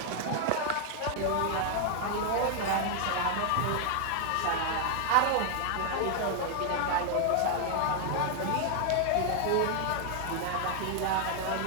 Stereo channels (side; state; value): both; different; correlation 0.00